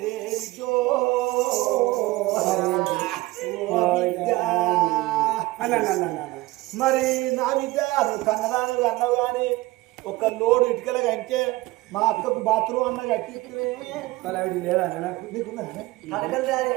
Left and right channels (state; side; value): quieter; left; 19.6 dB